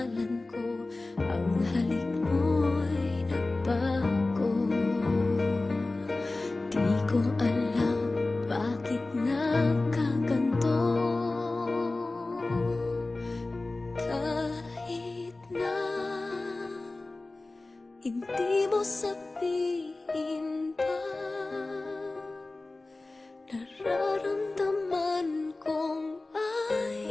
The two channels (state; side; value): quieter; right; 3.1 dB